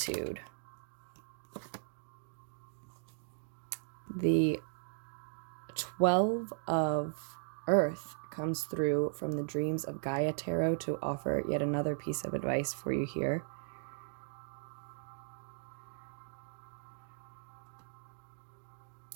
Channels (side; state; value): left; silent; digital silence